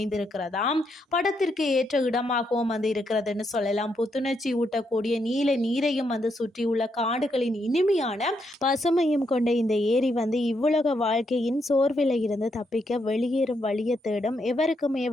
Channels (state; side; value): normal; both; correlation 0.78